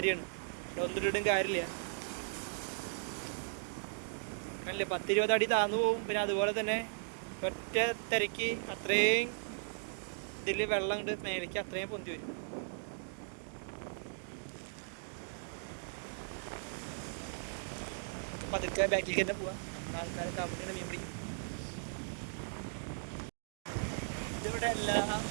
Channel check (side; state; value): left; silent; digital silence